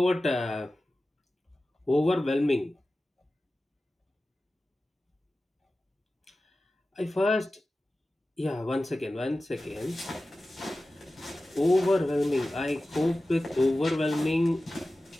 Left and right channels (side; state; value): both; normal; correlation 0.95